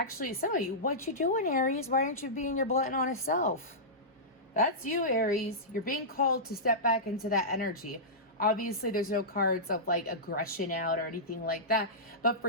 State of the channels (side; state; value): both; normal; correlation -0.15